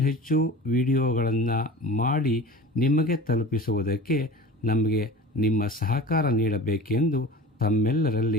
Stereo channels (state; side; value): normal; both; correlation 0.37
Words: ವಿಡಿಯೋಗಳನ್ನು ಮಾಡಿ ನಿಮಗೆ ತಲುಪಿಸುವುದಕ್ಕೆ ನಮಗೆ ನಿಮ್ಮ ಸಹಕಾರ ನೀಡಬೇಕೆಂದು